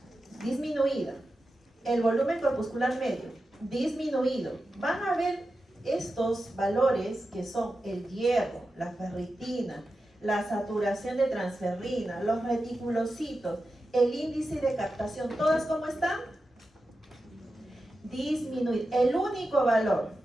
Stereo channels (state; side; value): normal; both; correlation 0.91